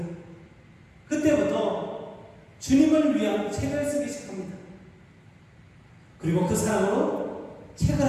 그때부터 주님을 위한 책을 쓰기 시작합니다. 그리고 그 사랑으로 책을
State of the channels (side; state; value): both; identical; correlation 1.00